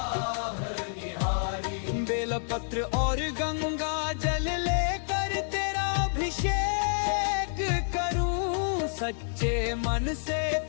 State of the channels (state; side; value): silent; right; digital silence